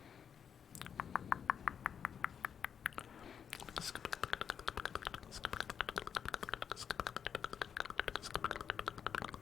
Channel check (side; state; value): right; quieter; 7.6 dB